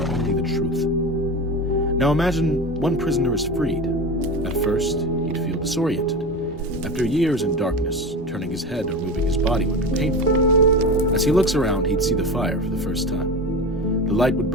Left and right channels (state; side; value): normal; both; correlation 0.27